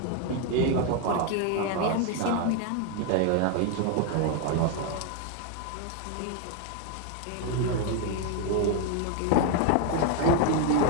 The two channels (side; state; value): both; different; correlation 0.01